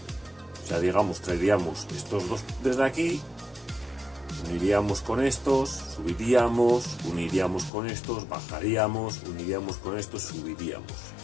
O sea, digamos, traeríamos estos dos desde aquí, uniríamos con estos, subiríamos, uniríamos con estos, bajaríamos, uniríamos con estos, subiríamos.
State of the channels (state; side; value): drops out; right; at 7.7 s